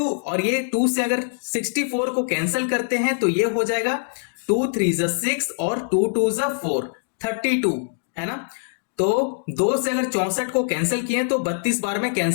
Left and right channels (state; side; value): silent; right; digital silence